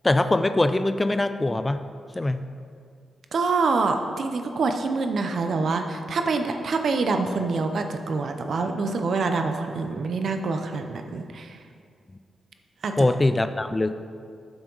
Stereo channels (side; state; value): both; normal; correlation 0.87